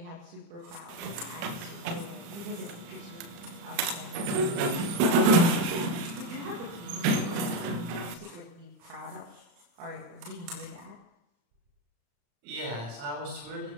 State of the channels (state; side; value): late; left; 36 ms